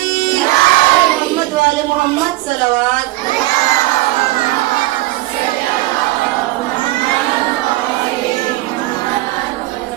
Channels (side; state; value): left; quieter; 18.6 dB